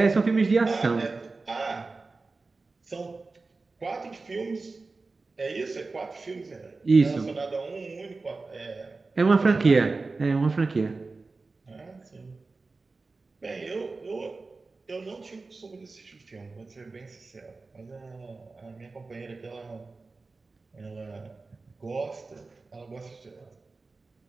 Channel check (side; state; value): left; quieter; 3.8 dB